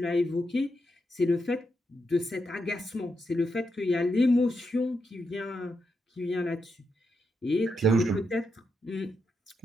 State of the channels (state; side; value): normal; both; correlation 0.84